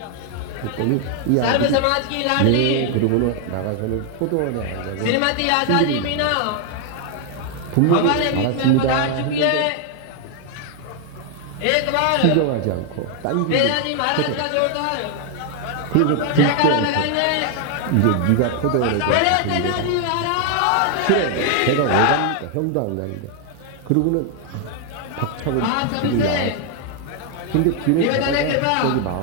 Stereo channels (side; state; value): both; different; correlation 0.00